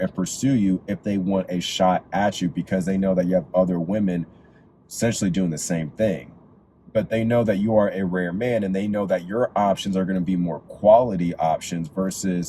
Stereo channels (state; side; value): identical; both; correlation 1.00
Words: and pursue you if they want a shot at you, because they know that you have other women essentially doing the same thing. But they know that you are a rare man, and they know that your options are going to be more quality options,